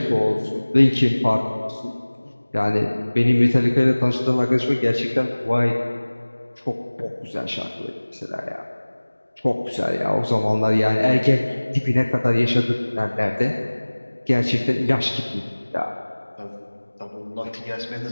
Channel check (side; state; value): both; inverted; correlation -1.00